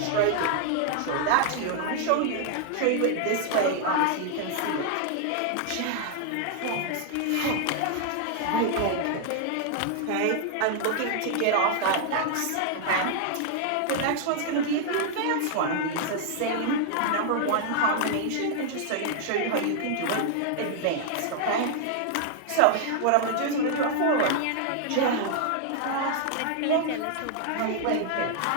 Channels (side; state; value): both; different; correlation 0.00